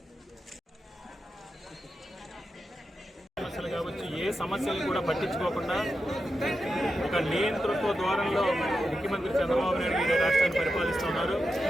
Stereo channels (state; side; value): normal; both; correlation 0.89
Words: సమస్యలు కావచ్చు, ఏ సమస్యలు కూడా పట్టించుకోకుండా ఒక నియంతృత్వ ద్వారంలో ముఖ్యమంత్రి చంద్రబాబు నాయుడు గారు రాష్ట్రాన్ని పరిపాలిస్తున్నారు.